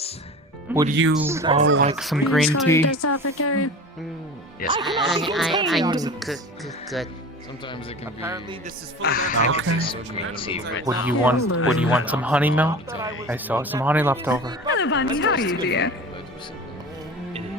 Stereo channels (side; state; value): both; normal; correlation 0.35